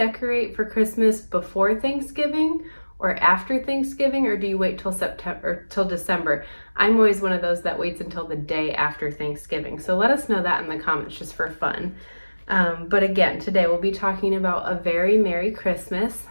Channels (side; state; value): both; inverted; correlation -1.00